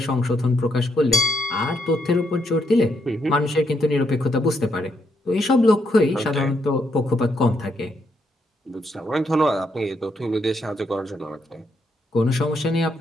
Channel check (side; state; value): both; normal; correlation 0.77